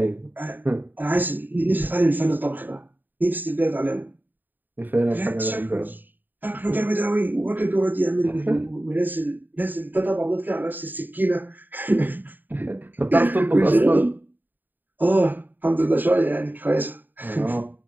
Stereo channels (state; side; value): late; left; 0.089 ms